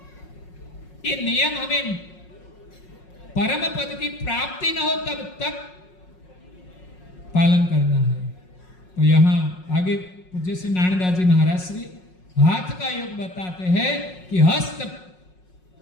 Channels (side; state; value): right; late; 5.5 ms